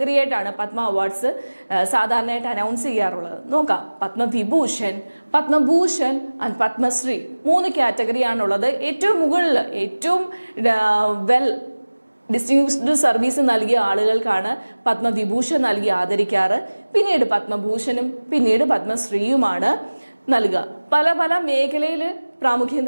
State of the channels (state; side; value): inverted; both; correlation -1.00